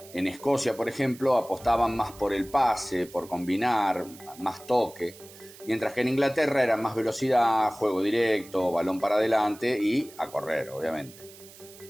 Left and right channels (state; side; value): noise; right; hiss, 20 dB below the sound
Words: En Escocia, por ejemplo, apostaban más por el pase, por combinar, más toque, mientras que en Inglaterra era más velocidad, juego directo, balón para adelante y a correr, obviamente.